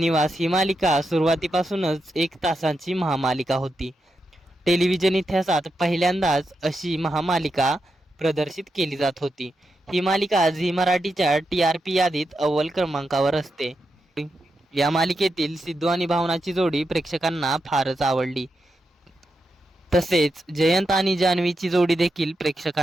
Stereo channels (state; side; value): normal; both; correlation 0.86